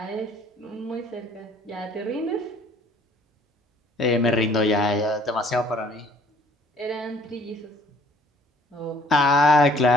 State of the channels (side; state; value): both; normal; correlation 0.57